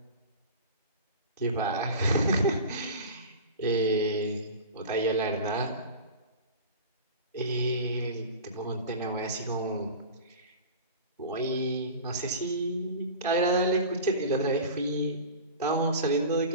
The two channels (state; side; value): inverted; both; correlation -0.34